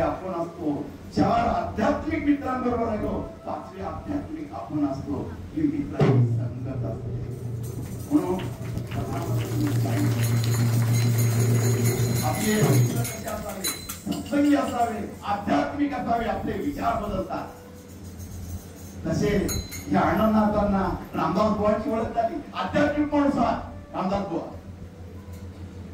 आपण असतो. 4 आध्यात्मिक मित्रांबरोबर राहिलो 5वे आध्यात्मिक आपण असतो. ही मित्रांची संगत असते. म्हणून आपले मित्र कसे असावे, सत्संगी असावे, आध्यात्मिक असावे, आपले विचार बदलतात. तसे या अण्णांना रामदास बुवांची ओळख झाली. आध्यात्मिक माणूस रामदास बुवा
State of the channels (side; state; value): both; identical; correlation 1.00